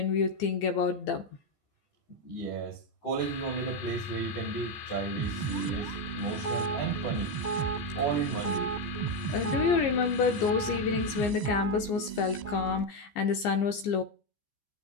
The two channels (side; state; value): right; late; 15 ms